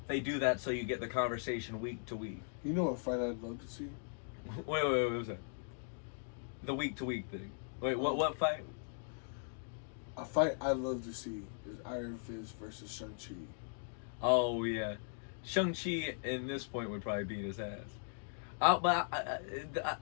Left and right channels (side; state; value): right; silent; digital silence